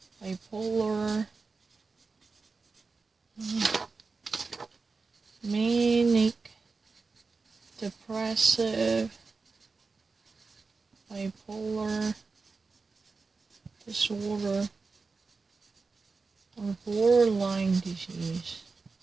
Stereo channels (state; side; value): quieter; left; 4.2 dB